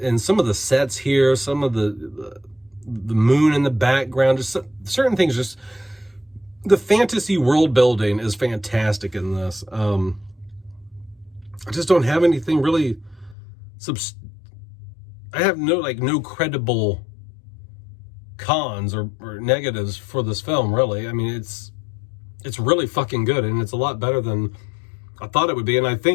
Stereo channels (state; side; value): drops out; right; at 13.4 s